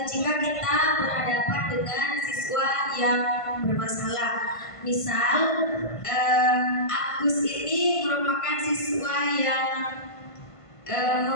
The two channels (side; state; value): right; late; 1.5 ms